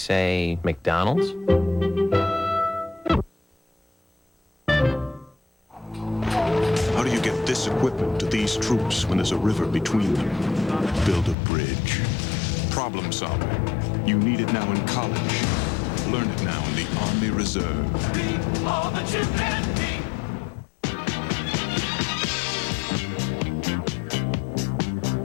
McDonald's? How do you get this equipment to these troops when there's a river between them? Build a bridge. Problem solving. You need it now in college. Learn it now in the Army Reserve. Be all that you can be.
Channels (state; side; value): drops out; right; at 11.4 s